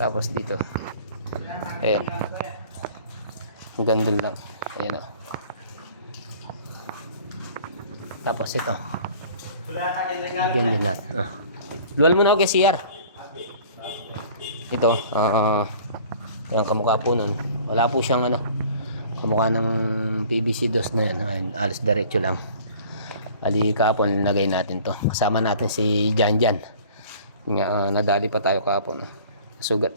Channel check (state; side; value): inverted; both; correlation -0.49